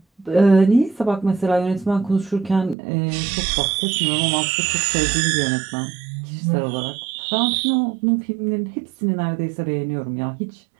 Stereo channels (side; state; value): left; drops out; at 2.8 s